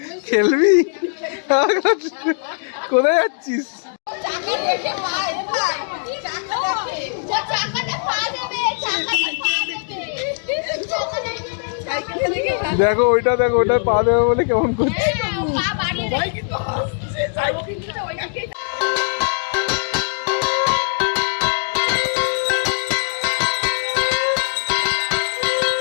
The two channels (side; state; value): right; silent; digital silence